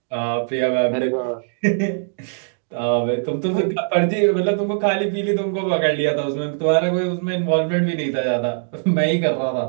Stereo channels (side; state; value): left; silent; digital silence